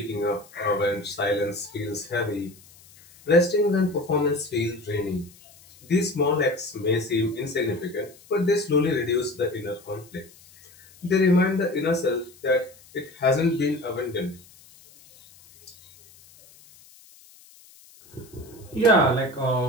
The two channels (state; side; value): noise; left; hiss, 25 dB below the sound